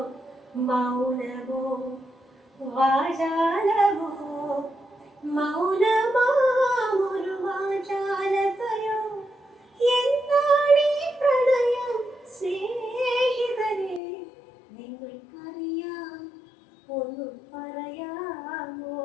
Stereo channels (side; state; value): right; drops out; at 14.0 s